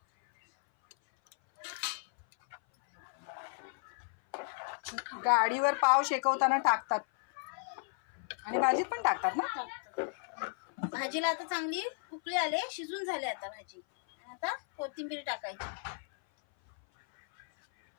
गाडीवर पाव शेकवताना टाकतात आणि भाजीत पण टाकतात ना. भाजीला आता चांगली उकळी आले, शिजून झाले आता भाजी. आता कोथिंबीर टाकायची.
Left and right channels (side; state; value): right; silent; 55 dB below the other